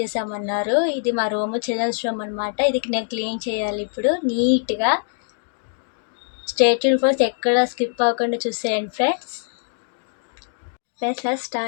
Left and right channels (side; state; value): right; silent; digital silence